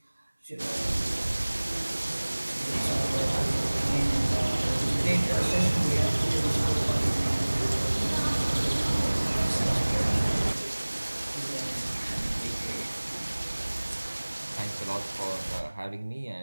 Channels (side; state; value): both; inverted; correlation -1.00